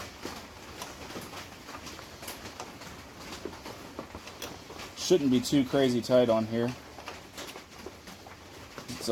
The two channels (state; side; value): identical; both; correlation 1.00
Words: Shouldn't be too crazy tight on here. It's